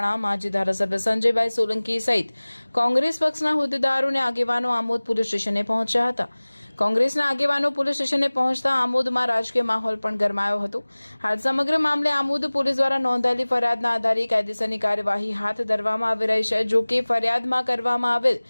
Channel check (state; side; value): inverted; both; correlation -1.00